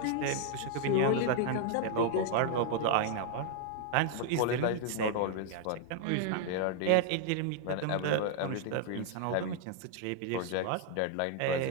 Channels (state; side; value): different; both; correlation 0.00